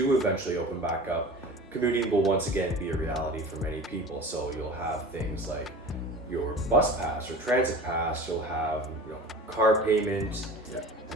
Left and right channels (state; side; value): normal; both; correlation 0.38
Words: eventually open back up, commuting will once again be a reality for many people. So you'll have things like your bus pass or transit pass, you'll have car payment. Yeah.